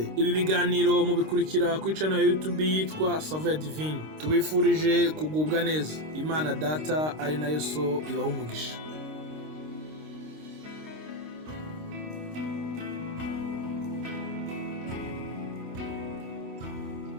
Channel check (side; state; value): left; late; 26 ms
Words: Ibi biganiro mubikurikira ku channel ya YouTube yitwa Saveur Divine. Tubifurije kugubwa neza. Imana Data ari nayo So ibaha umugisha.